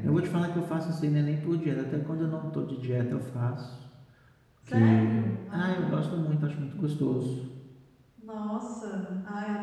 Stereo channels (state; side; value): identical; both; correlation 1.00